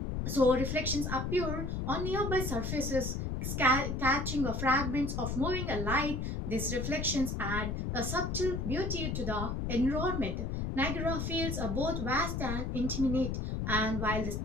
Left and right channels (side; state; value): left; noise; rumble, 2 dB below the sound